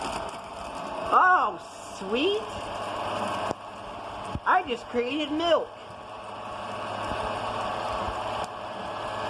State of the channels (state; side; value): identical; both; correlation 1.00